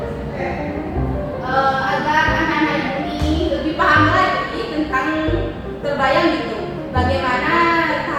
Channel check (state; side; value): identical; both; correlation 1.00